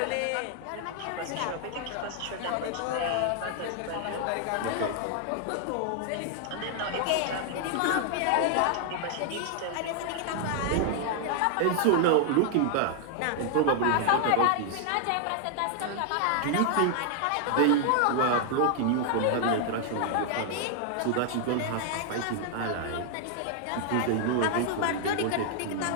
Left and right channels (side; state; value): both; different; correlation 0.00